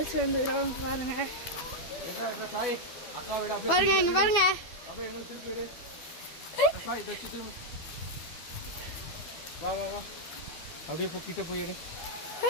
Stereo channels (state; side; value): late; right; 12 ms